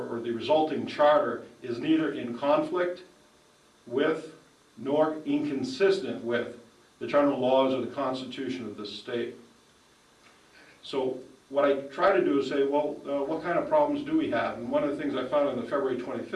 the resulting charter is neither in conflict with nor inconsistent with the general laws of the Constitution of the state. So what I try to do is say, well, what kind of problems do we have? And one of the things I found in the February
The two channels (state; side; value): identical; both; correlation 1.00